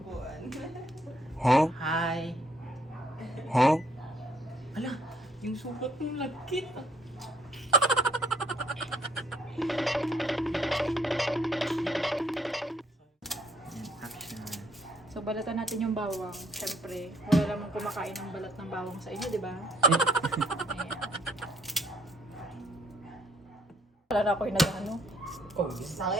Huh? Hi. Huh? Ala, yung sukat ng lagkit. So, balatan natin yung bawang. Siyempre, wala namang kumakain ng balat ng bawang sa inyo, di ba? Ayan. Wala na ako yung nag-ano. Oh,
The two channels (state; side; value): normal; both; correlation 0.66